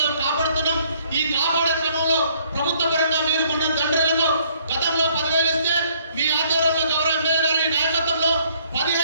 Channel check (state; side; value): inverted; both; correlation -0.63